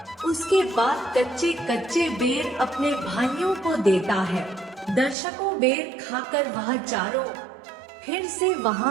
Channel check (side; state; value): left; drops out; at 5.2 s